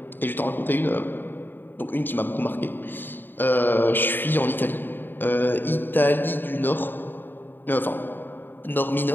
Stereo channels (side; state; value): right; late; 0.094 ms